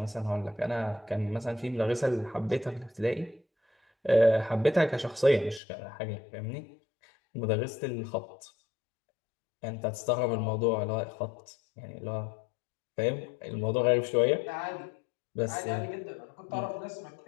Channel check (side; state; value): right; drops out; at 5.6 s